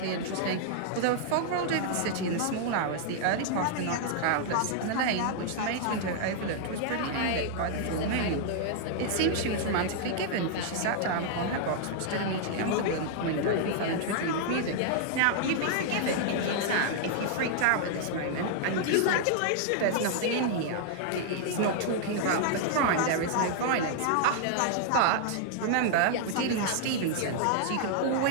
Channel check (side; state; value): both; different; correlation -0.01